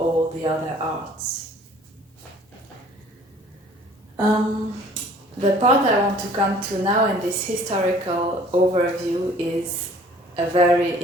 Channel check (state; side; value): normal; both; correlation 0.53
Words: the other arts. The part I want to come to now in this historical overview is a very